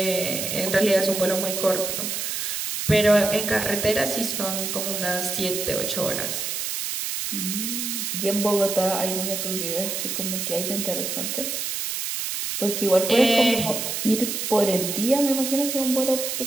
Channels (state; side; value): noise; right; hiss, 3 dB below the sound